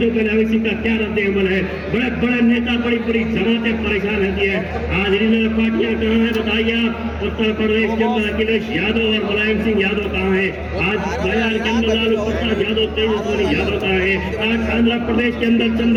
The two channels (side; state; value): both; identical; correlation 1.00